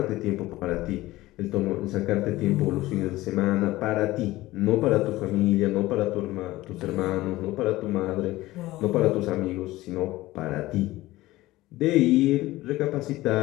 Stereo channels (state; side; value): quieter; right; 17.7 dB